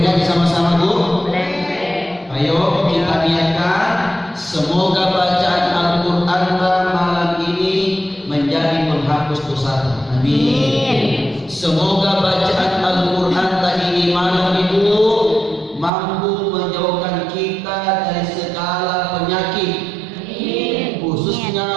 ngaji sama-sama bu? Ayo kita niatkan, semoga bacaan Al-Quran malam ini menjadi penghapus dosa. Amin. Semoga bacaan Al-Quran ini malam itu mampu menjauhkan kita dari segala penyakit. Amin.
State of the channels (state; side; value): drops out; left; at 15.9 s